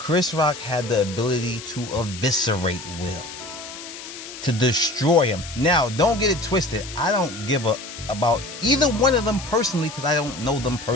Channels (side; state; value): left; noise; hiss, 12 dB below the sound